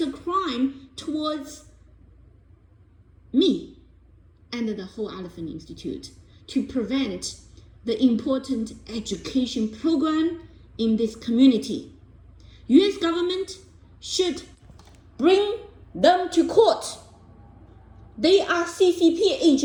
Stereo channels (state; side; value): identical; both; correlation 1.00